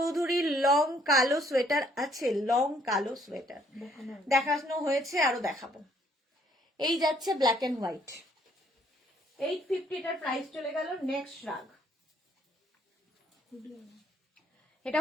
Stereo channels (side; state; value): both; normal; correlation 0.65